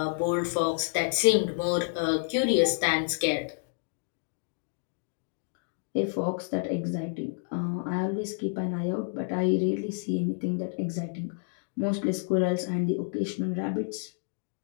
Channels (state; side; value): silent; right; 58 dB below the other